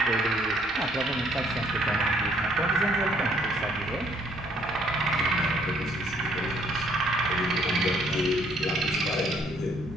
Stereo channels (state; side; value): normal; both; correlation 0.64